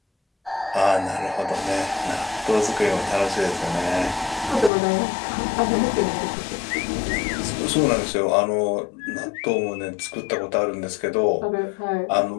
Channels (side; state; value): right; drops out; at 4.7 s